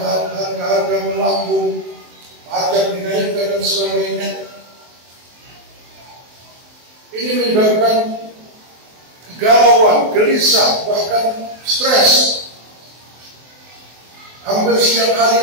harga melambung, pajak dinaikkan dan sebagainya. Ini menyebabkan kegalauan, gelisah, bahkan stres. Hampir setiap hari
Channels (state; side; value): late; left; 23 ms